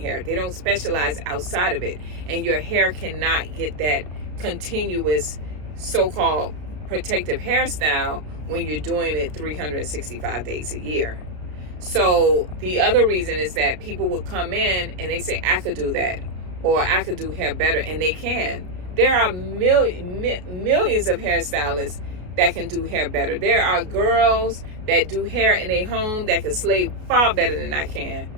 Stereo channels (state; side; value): late; left; 33 ms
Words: They don't specialize outside of it. And your hair cannot get that continuous so-called protective hairstyle when you're doing it 365 days a year. So the other reason is that people will come in and they say, I could do that, or I could do hair better, and they can. There are millions of hairstylists that can do hair better. There are girls that do hair in a home that can slay far better than I can.